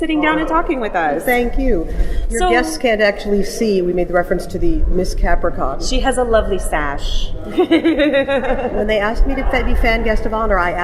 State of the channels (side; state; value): both; identical; correlation 1.00